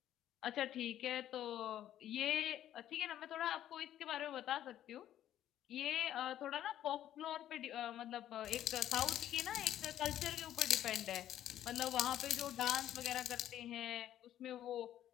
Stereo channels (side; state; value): right; quieter; 11.9 dB